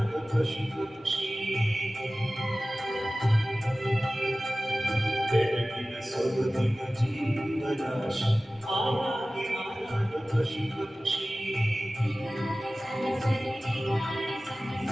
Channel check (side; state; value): both; normal; correlation 0.97